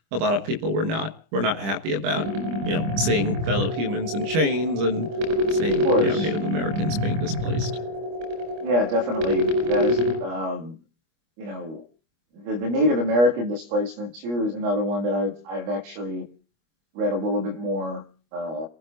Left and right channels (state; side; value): late; left; 25 ms